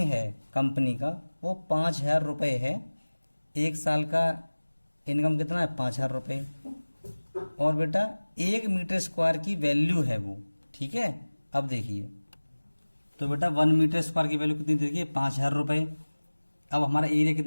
है कंपनी का वो 5000 रुपये है। एक साल का इनकम कितना है? 5000 रुपये। और बेटा 1 मीटर स्क्वायर की वैल्यू है वो, ठीक है। अब देखिए तो बेटा 1 मीटर स्क्वायर की वैल्यू कितनी देखिए? 5000 रुपये। अब हमारा एरिया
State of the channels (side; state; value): both; inverted; correlation -1.00